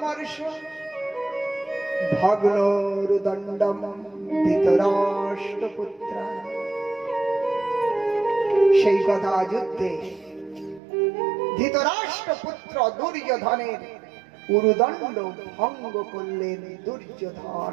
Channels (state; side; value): drops out; left; at 10.8 s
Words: ভগ্নোরুদণ্ডম ধৃতরাষ্ট্রপুত্র। সেই গদা যুদ্ধে ধৃতরাষ্ট্রপুত্র দুর্যোধনের উরুদণ্ড ভঙ্গ করলেন।